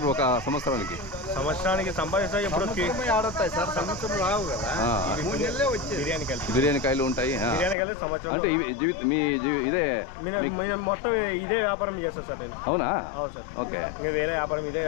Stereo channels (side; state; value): right; drops out; at 7.8 s